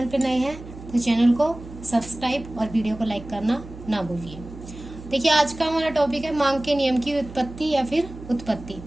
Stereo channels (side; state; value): right; noise; hum, 14 dB below the sound